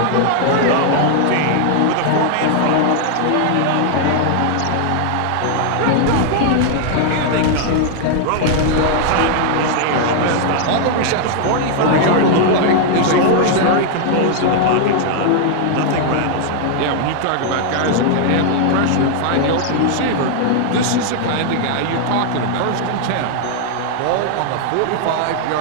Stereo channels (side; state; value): both; different; correlation 0.00